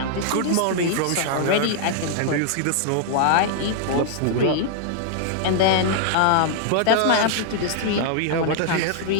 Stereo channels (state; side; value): different; both; correlation -0.01